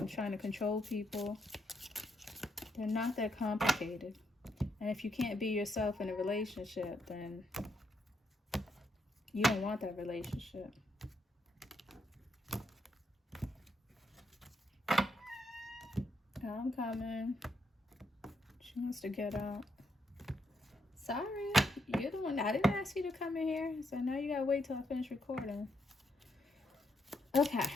trying to control people, they're not that complicated. And if you can't be yourself in a relationship, then you don't want that relationship. I'm coming. She wants to get out. Sorry, you're the one. I didn't ask you to come in here, so now you gotta wait till I finish recording. Okay.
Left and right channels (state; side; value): normal; both; correlation 0.77